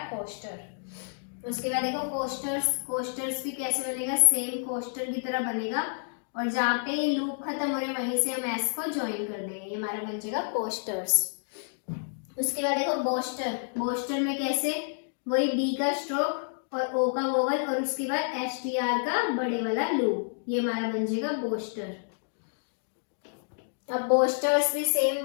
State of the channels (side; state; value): right; silent; digital silence